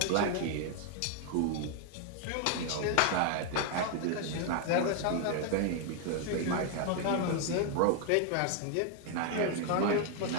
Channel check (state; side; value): different; both; correlation 0.00